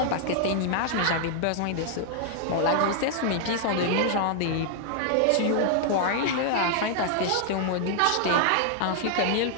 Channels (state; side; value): different; both; correlation 0.00